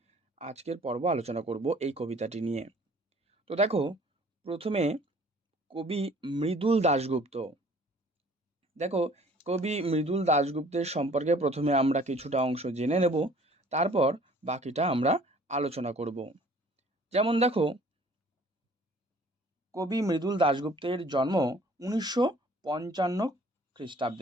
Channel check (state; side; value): normal; both; correlation 0.54